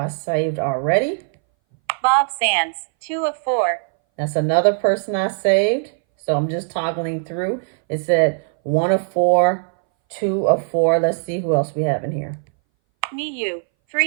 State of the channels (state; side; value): silent; left; 62 dB below the other